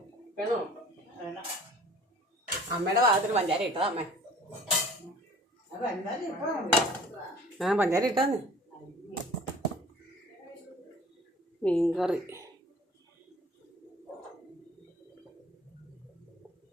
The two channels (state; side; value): normal; both; correlation 0.49